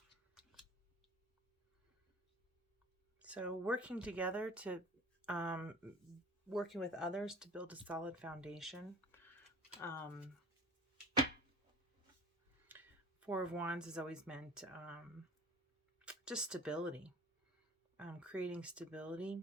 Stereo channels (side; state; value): both; normal; correlation 0.44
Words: So working together to, working with others to build a solid foundation. Four of Wands has always meant just stability. Creating stability.